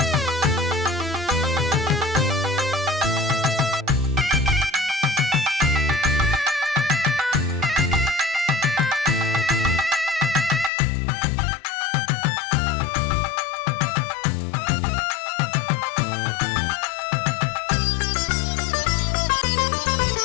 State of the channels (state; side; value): drops out; right; at 10.7 s